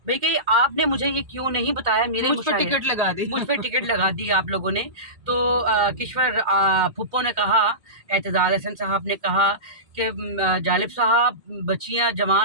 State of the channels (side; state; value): left; late; 2.2 ms